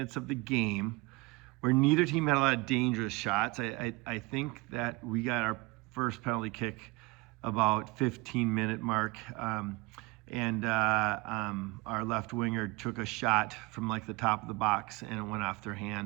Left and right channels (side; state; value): left; quieter; 24.4 dB